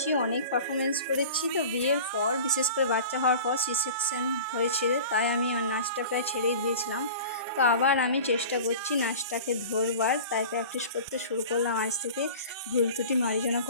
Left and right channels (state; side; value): inverted; both; correlation -0.38